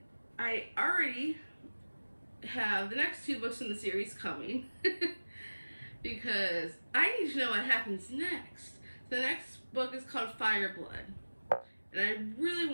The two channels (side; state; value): both; inverted; correlation -1.00